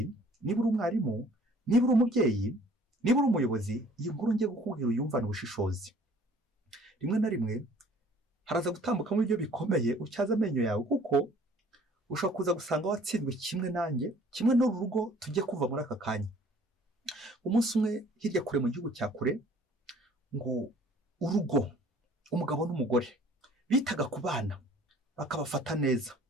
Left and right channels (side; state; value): both; normal; correlation 0.54